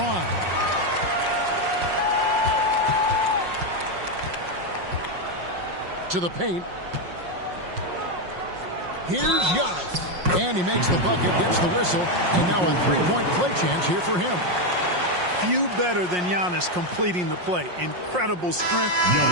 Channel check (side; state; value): left; late; 5.6 ms